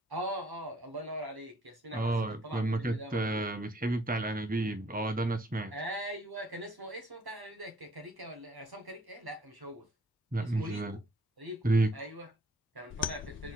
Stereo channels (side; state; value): both; normal; correlation 0.63